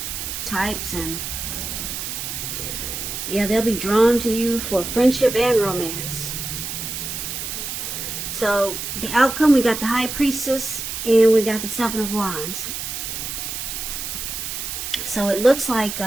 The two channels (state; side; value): noise; right; hiss, 5 dB below the sound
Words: types, and yeah, they'll be drawn to you for friendship and romance. So, the outcome, we got the High Priestess and we got the 7 of Wands. So, it looks like